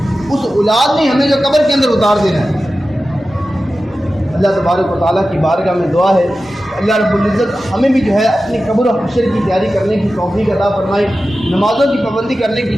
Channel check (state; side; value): normal; both; correlation 0.94